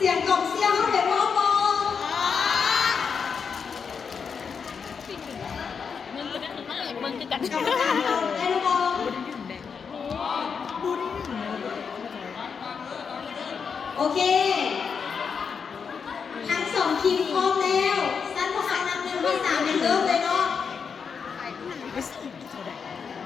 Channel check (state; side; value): quieter; right; 6.1 dB